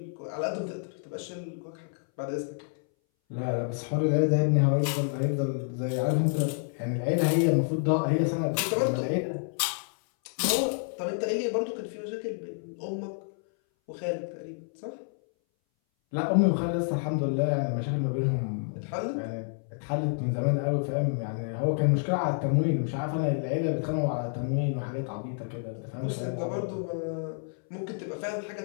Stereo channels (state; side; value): silent; right; 59 dB below the other